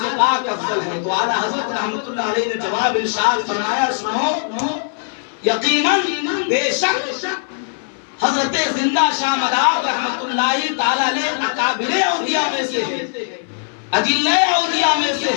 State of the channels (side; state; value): right; silent; 58 dB below the other